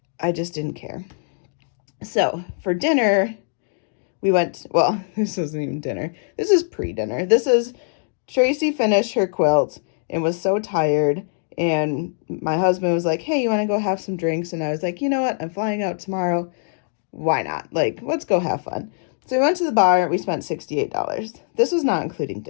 I just didn't care. So for dinner, we went, well, this wasn't even dinner. This is pre-dinner. This is Tracey finished her quilt and was so tired. And my husband was like, hey, you want to go have some drinks? And I was like, you know what? I'm flying out tomorrow. Why not? Like, let's go have fun. So we went to the bar. We spent $68. This was not including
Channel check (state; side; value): silent; right; digital silence